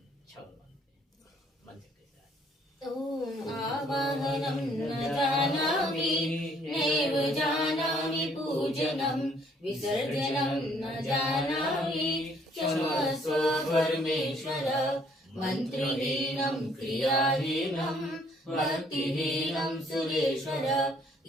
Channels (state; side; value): normal; both; correlation 0.63